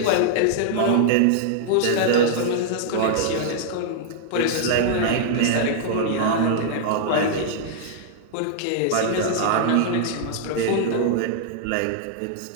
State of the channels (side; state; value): both; different; correlation -0.01